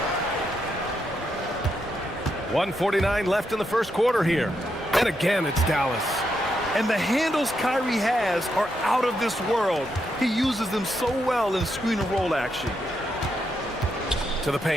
1:49 left in the first quarter here. And again, it's Dallas. And the handles Kyrie has are out of this world. He uses them so well in screen and roll action. To the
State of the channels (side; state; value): both; normal; correlation 0.81